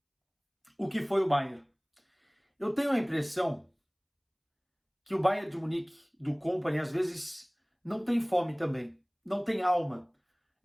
o que foi o Bayern. Eu tenho a impressão que o Bayern de Munique, do Kompany, às vezes não tem fome também, não tem alma.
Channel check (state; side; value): identical; both; correlation 1.00